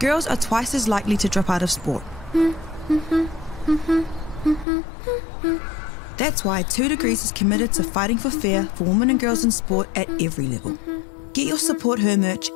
are twice as likely to drop out of sport. That's why 2 Degrees is committed to fighting for fair for women and girls in sport at every level. Get your Support Her merch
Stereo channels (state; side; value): drops out; right; at 4.7 s